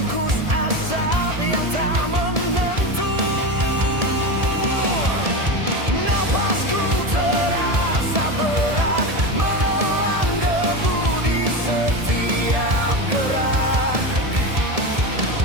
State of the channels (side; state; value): left; late; 1.7 ms